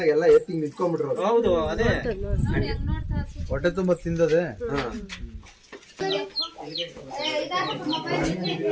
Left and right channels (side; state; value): both; identical; correlation 1.00